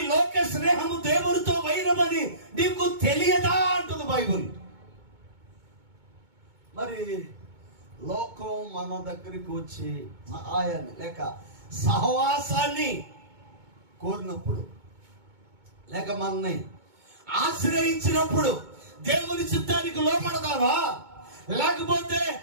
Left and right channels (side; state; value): left; late; 2.2 ms